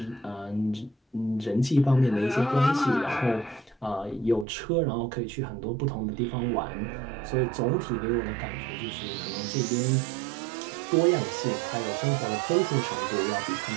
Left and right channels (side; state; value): left; drops out; at 4.5 s